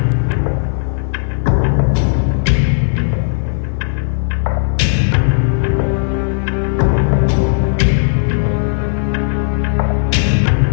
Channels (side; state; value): right; silent; digital silence